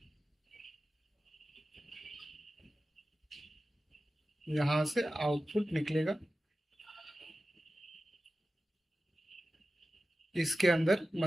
यहां से आउटपुट निकलेगा, इसके अंदर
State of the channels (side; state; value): both; normal; correlation 0.94